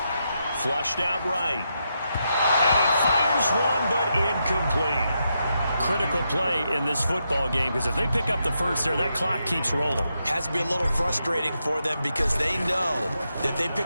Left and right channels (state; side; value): inverted; both; correlation -0.83